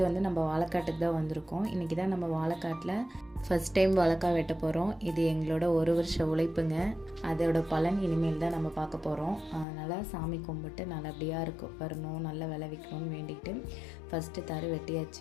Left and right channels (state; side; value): drops out; right; at 9.7 s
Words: நம்ம வாழைக்காட்டுக்கு தான் வந்திருக்கோம். இன்றைக்கி தான் நம்ம வாழைக்காட்டில் ஃபஸ்ட் டைம் வாழைக்காய் வெட்ட போகிறோம். இது எங்களோட 1 வருஷ உழைப்புங்க. அதோட பலன் இனிமேல் தான் நம்ம பார்க்க போகிறோம். அதனால் சாமி கும்பிட்டு நல்லபடியாக வரணும், நல்லா விளைவிக்கணும்னு வேண்டிக்கிட்டு ஃபஸ்ட்டு தரு